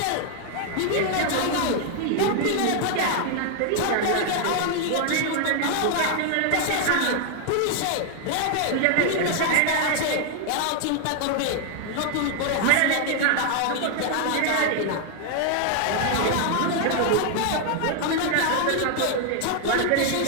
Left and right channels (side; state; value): both; different; correlation 0.00